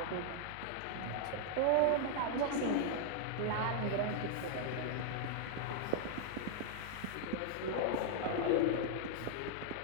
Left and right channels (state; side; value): different; both; correlation -0.01